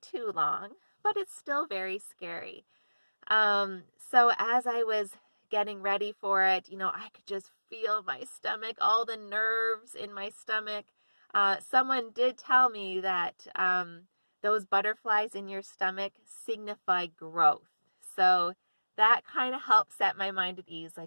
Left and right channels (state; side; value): inverted; both; correlation -1.00